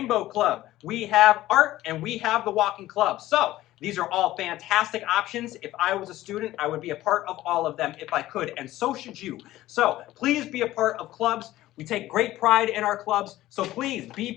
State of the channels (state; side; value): quieter; right; 15.5 dB